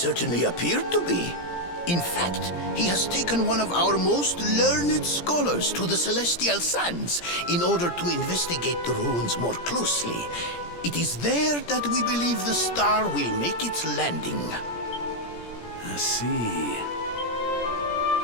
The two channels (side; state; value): right; late; 17 ms